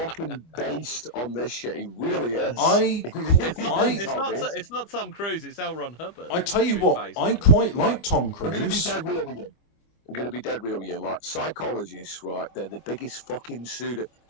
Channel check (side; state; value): right; late; 25 ms